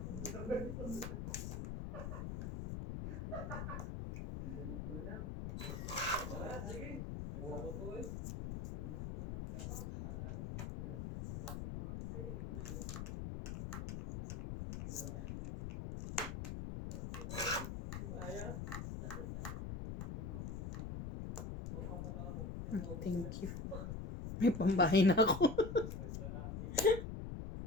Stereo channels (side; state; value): left; noise; rumble, 5 dB below the sound